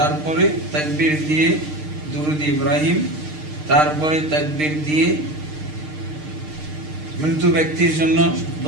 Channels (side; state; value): left; late; 6.6 ms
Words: তাকবীর দিয়ে দুরূদ ইব্রাহিম, তারপরে তাকবীর দিয়ে মৃত্যু ব্যক্তির জন্য